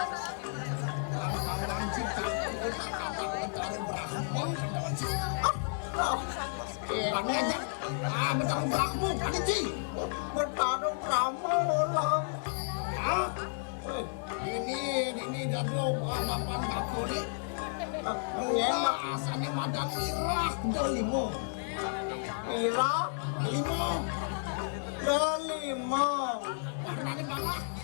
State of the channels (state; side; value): silent; right; 56 dB below the other